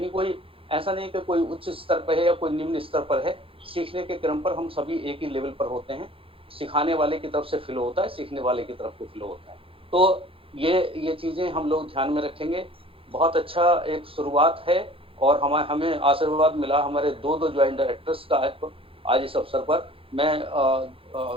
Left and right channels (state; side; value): late; left; 0.27 ms